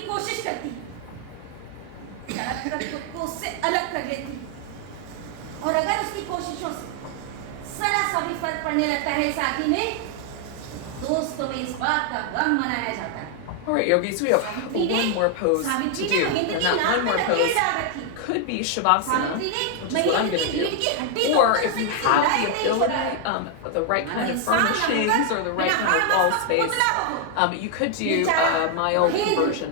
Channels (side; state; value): both; different; correlation 0.00